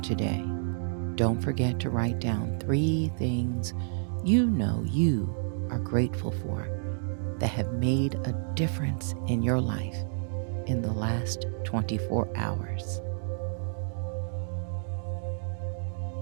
today, don't forget to write down 3 things you know you are grateful for that have made a difference in your life in the last 24 hours.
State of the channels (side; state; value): left; silent; digital silence